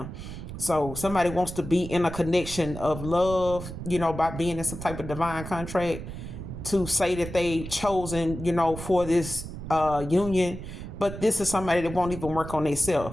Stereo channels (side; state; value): right; noise; rumble, 9 dB below the sound